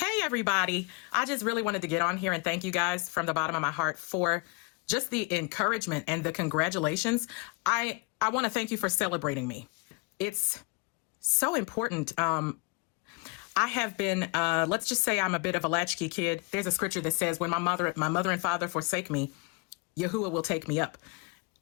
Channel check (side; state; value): right; quieter; 28.6 dB